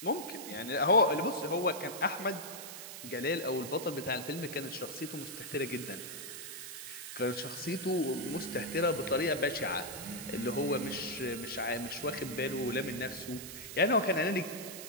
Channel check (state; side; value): noise; right; hiss, 10 dB below the sound